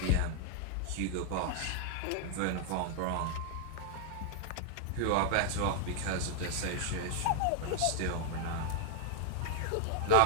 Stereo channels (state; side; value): different; both; correlation 0.00